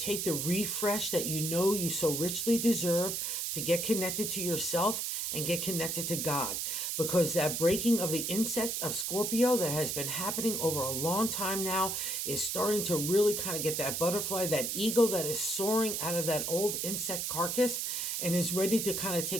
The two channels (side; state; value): right; noise; hiss, 1 dB below the sound